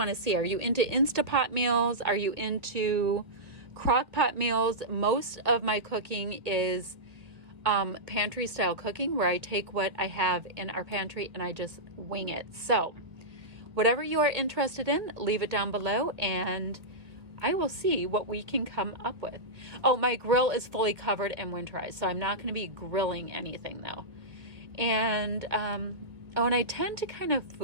to see? Are you into Instapot meals? Are you into crock pot meals? Most of my cooking is pantry style cooking, where I take what I have in our pantry and I just wing it. So whatever you are interested in, leave it down below and I will see what we can come up with. Oh, my grill is fully covered and winterized, so I'm not going to be grilling anything though. And and I tend to kind of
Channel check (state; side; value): late; left; 1.8 ms